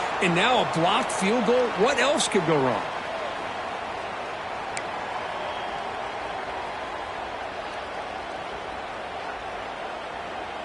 and now a blocked field goal. What else could go wrong?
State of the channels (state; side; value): identical; both; correlation 1.00